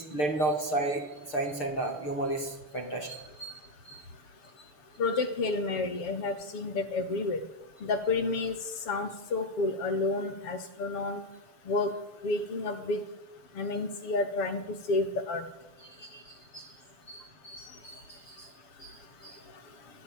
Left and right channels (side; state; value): right; late; 6.7 ms